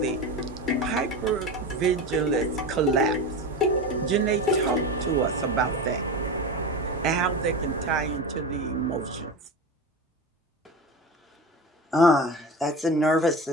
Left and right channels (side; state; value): both; normal; correlation 0.26